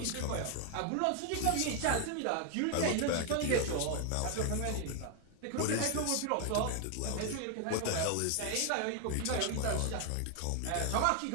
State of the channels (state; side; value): different; both; correlation 0.00